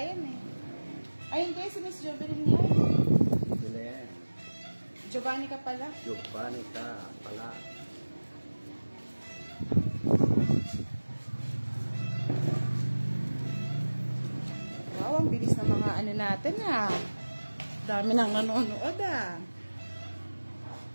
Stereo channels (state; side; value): inverted; both; correlation -1.00